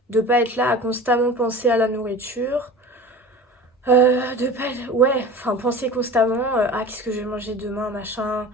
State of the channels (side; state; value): both; normal; correlation 0.37